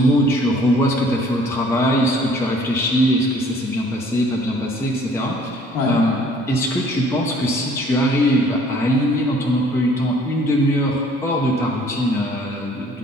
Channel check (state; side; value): normal; both; correlation 0.56